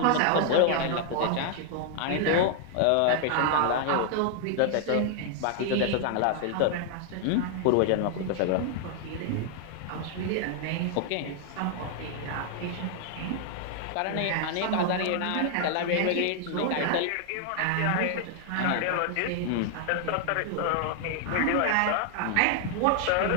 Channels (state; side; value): different; both; correlation 0.00